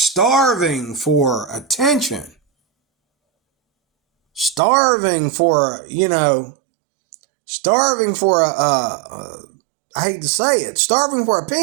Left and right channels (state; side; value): drops out; left; at 4.6 s